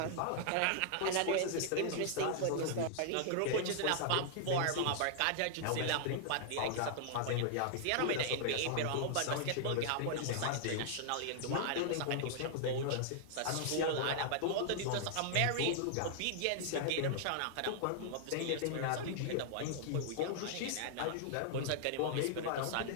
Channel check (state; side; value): different; both; correlation -0.01